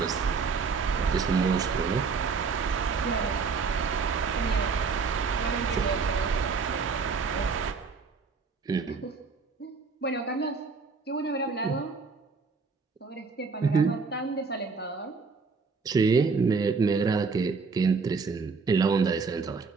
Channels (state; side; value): quieter; left; 4.9 dB